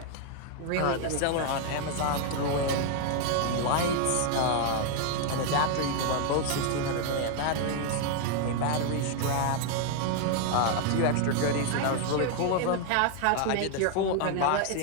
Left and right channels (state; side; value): different; both; correlation 0.00